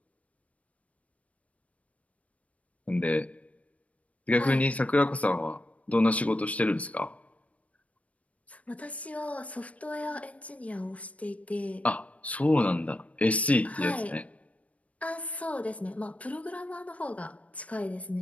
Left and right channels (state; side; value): late; right; 0.066 ms